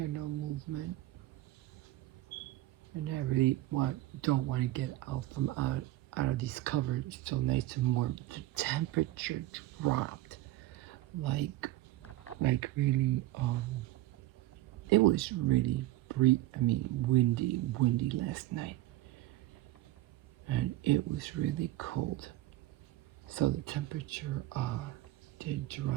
no movement, and I really don't want to get out of these covers. It's so nice and warm. The temperature dropped like really. It was really windy last night, and it was really cold. So the temperature did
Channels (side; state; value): left; quieter; 16.1 dB